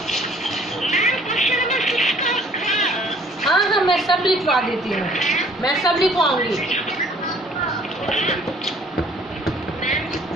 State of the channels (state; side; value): normal; both; correlation 0.56